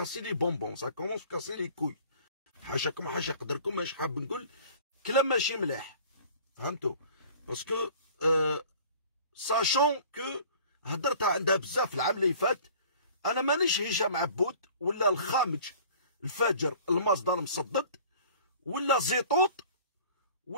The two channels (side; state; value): both; inverted; correlation -0.47